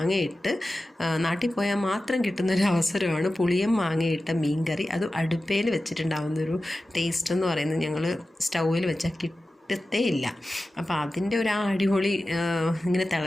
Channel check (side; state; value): both; normal; correlation 0.94